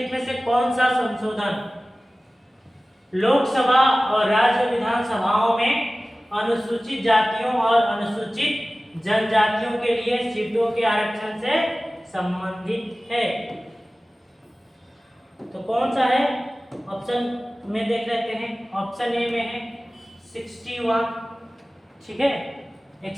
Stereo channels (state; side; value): normal; both; correlation 0.97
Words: में से कौन सा संशोधन लोकसभा और राज्य विधानसभाओं में अनुसूचित जातियों और अनुसूचित जनजातियों के लिए सीटों के आरक्षण से संबंधित है? तो कौन सा है? ऑप्शन में देख लेते हैं। ऑप्शन ए में है 61, ठीक है,